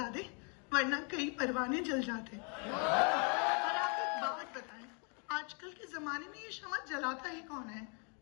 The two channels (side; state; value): right; quieter; 37.4 dB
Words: वरना कई परवाने जल जाते। और आप एक बात बताएं, आजकल के जमाने में ये शमा जलाता ही कौन है?